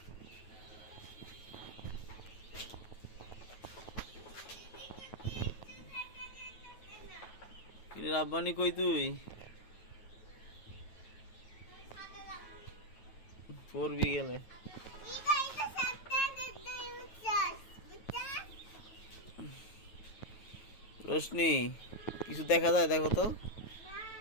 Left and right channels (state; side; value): late; right; 9.2 ms